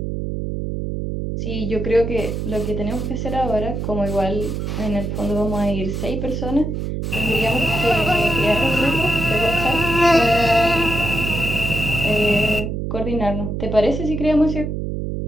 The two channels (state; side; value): noise; right; hum, 3 dB below the sound